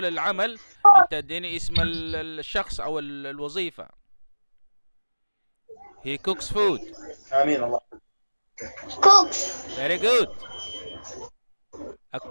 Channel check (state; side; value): inverted; both; correlation -1.00